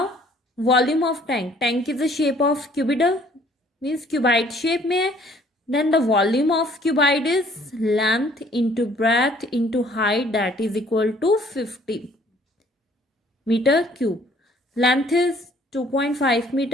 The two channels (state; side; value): normal; both; correlation 0.59